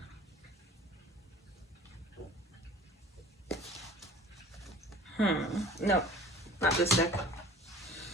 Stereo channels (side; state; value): both; normal; correlation 0.45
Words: No, not this deck.